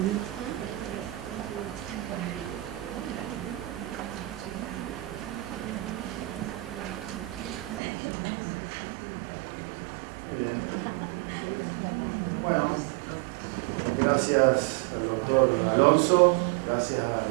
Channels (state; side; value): drops out; left; at 7.8 s